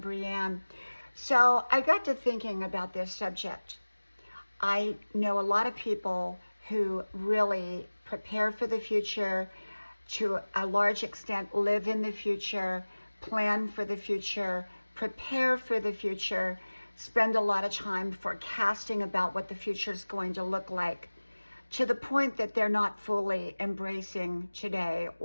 So I got to thinking about this subject. I know a lot of people who really prepare for the future, to a large extent live in the future, plan for the future, prepare for the future, spend a lot of time forecasting about what the future is going to look like, to the point that they're not fully embracing today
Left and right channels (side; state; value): both; inverted; correlation -1.00